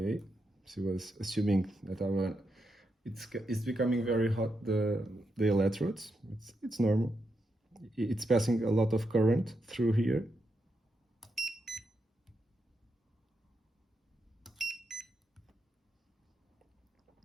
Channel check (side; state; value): both; normal; correlation 0.84